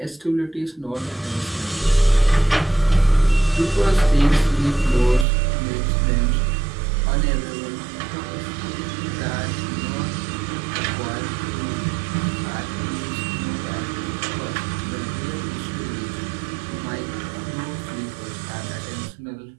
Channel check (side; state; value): left; drops out; at 5.2 s